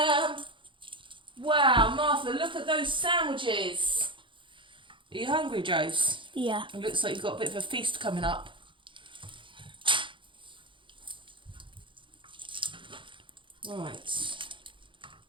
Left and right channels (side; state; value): left; late; 0.24 ms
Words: Wow, Martha, look at those sandwiches. Are you hungry, Jose? Yeah. It looks like you've got a bit of a feast coming up. Right.